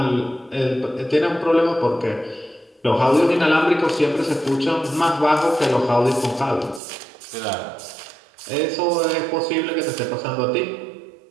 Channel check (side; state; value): left; drops out; at 6.8 s